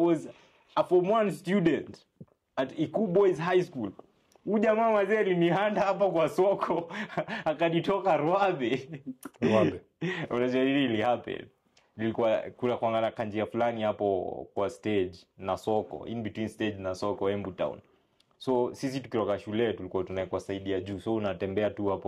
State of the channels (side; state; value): both; identical; correlation 1.00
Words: a form 1 student at Iku Boys High School. Huyo jamaa mazi alinihanda hapa kwa soko akanitoka Rwabe. Unajua really happen. Nilikuwa kuna kuangana kanjia fulani hapo kwa stage na soko, in between stage na soko Embu Town. So sisi tukiroka shule tulikuwa tunaekwa saidia juu, so unatembea tu